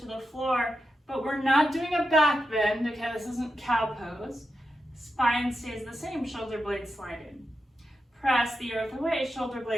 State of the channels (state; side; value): normal; both; correlation 0.88